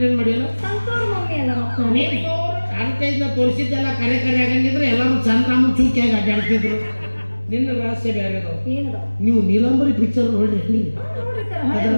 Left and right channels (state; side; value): inverted; both; correlation -1.00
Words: ಮಾಡಿಲ್ಲ. ಅಡ್ವರ್ಟೈಸ್ನ ತೋರಿಸಿದ್ದೆಲ್ಲ ಕರೆ ಆಗಂಗಿದ್ರೆ ಎಲ್ಲರೂ ಚಂದ್ರಾಮನ್ ಚೂಕಿಯಾಗಿ ಅಡ್ಡಾಡ್ತಿದ್ರು. ನಿನ್ನ ರಹಸ್ಯ ಬೇರೆ. ನೀವು ನೀಲಂಬರಿ ಪಿಕ್ಚರ್ ನೋಡ್ರಿ. ಅದ